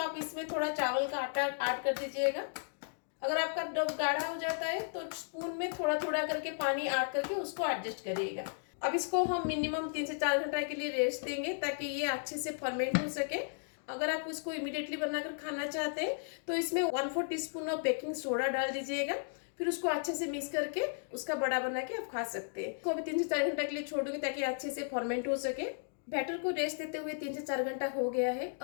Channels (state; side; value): silent; right; digital silence